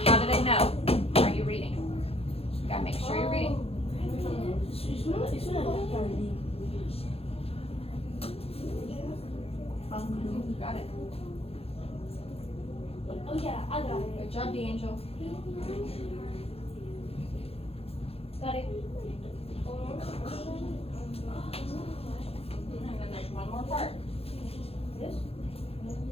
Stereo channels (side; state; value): right; late; 0.28 ms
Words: How do they know? Are you reading? You gotta make sure you're reading. Got it. Oh yeah, I got it. Good job, D'Angel. Got it. And then there's one more part. Okay,